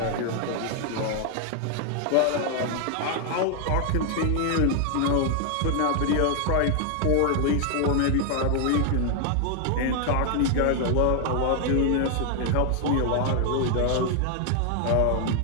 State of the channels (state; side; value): different; both; correlation 0.00